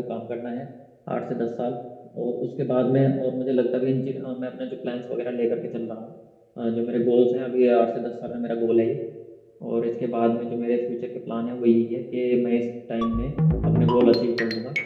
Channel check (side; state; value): both; identical; correlation 1.00